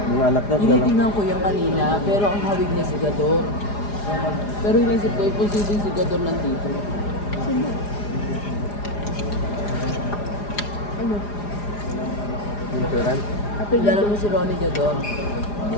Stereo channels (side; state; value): right; late; 4.9 ms